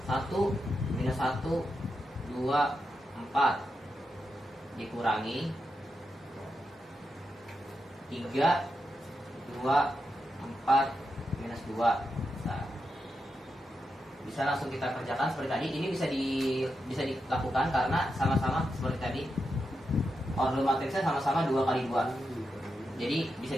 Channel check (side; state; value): both; normal; correlation 0.87